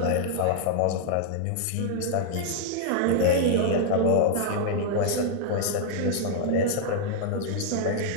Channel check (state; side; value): different; both; correlation -0.01